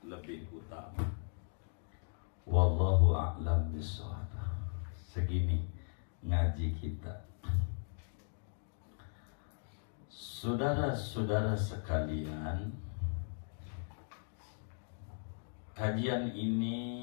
lebih utama. Wallahu a'lam bishawab. Segini ngaji kita. Saudara-saudara sekalian, kajian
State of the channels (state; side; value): silent; right; digital silence